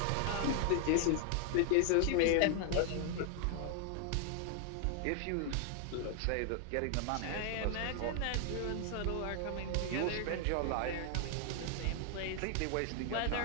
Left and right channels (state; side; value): different; both; correlation 0.00